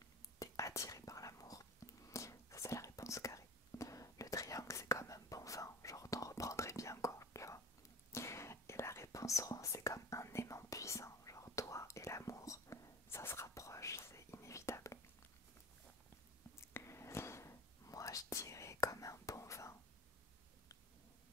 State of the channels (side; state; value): both; normal; correlation 0.36